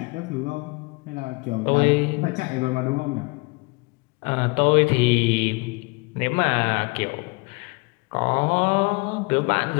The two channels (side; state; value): right; quieter; 28.0 dB